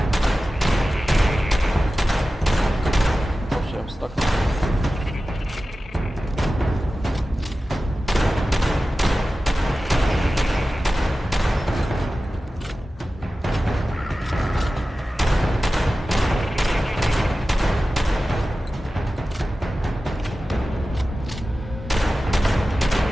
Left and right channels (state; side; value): normal; both; correlation 0.95